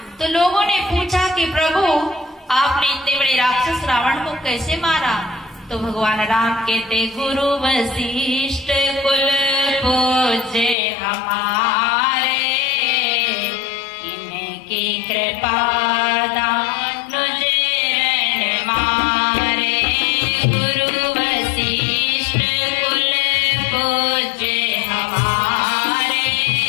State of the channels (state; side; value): drops out; right; at 10.8 s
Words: तो लोगों ने पूछा कि प्रभु आपने इतने बड़े राक्षस रावण को कैसे मारा। तो भगवान राम कहते गुरु वशिष्ठ कुल पूज्य हमारे, इनकी कृपा दानुज रण मारे। गुरु वशिष्ठ कुल पूज्य हमारे,